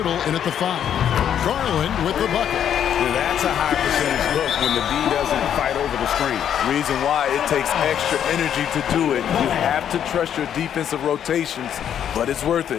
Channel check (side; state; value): right; quieter; 9.3 dB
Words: in at the 5. Garland with the bucket. That's a high percentage look when the D doesn't fight over the screen. Reason why it takes extra energy to do it. You have to trust your defensive rotations, but it's worth